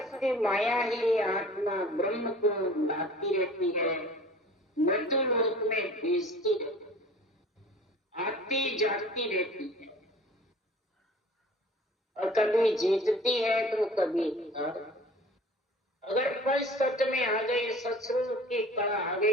माया ही आत्मा ब्रह्म को लाती रहती है, मृत्यु लोक में भेजती रहती है, आती जाती रहती है, और कभी जीतती है तो कभी अगर पंच तत्व में आ गई, सत्स्वरूप की कला आ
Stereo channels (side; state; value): both; normal; correlation 0.45